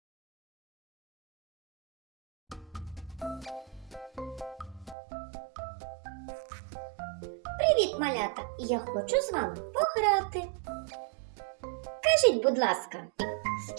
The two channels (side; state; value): left; drops out; at 5.0 s